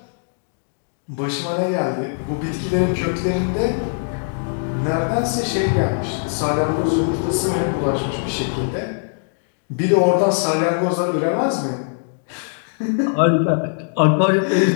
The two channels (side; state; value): right; silent; digital silence